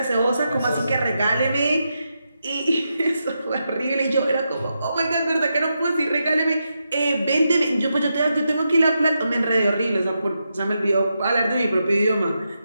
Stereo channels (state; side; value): inverted; both; correlation -0.86